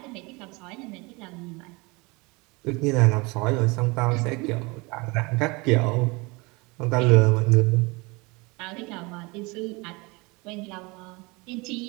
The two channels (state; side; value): quieter; left; 26.2 dB